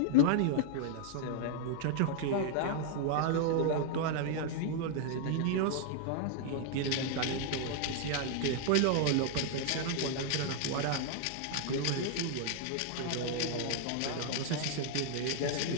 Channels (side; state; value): both; different; correlation -0.01